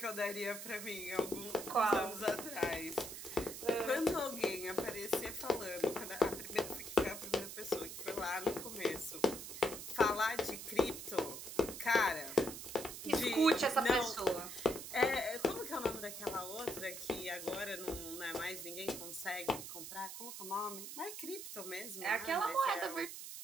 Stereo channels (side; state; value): right; noise; hiss, 9 dB below the sound